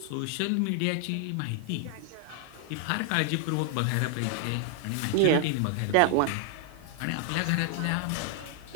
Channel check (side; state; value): both; different; correlation 0.00